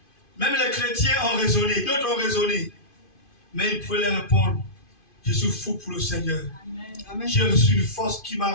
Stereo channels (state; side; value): late; right; 2.5 ms